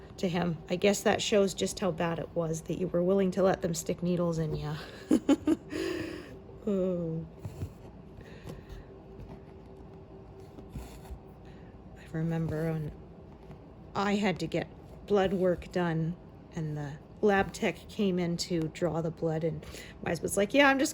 to him, I guess that shows just how bad it was that you were willing to let them stick needles in you. Oh. I remember when I had to get blood work done, and the lab tech came in to draw the blood, and my husband's like, yeah, I'm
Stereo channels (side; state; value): both; identical; correlation 1.00